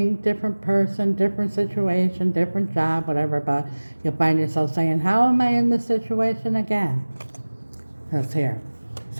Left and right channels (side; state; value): both; inverted; correlation -1.00